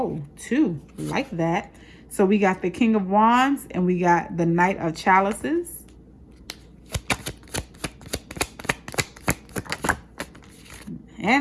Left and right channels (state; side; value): identical; both; correlation 1.00